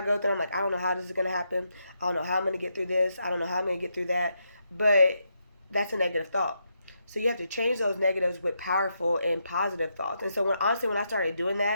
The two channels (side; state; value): both; inverted; correlation -0.81